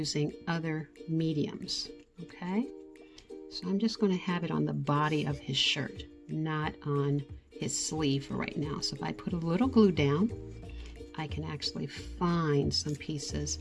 other mediums. Okay. So I'm just going to have it on the body of his shirt, not on his sleeve for right now. So if I put a little glue down, I can actually find some pieces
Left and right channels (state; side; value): identical; both; correlation 1.00